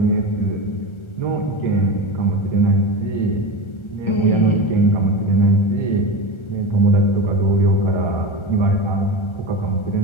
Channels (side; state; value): right; late; 1.3 ms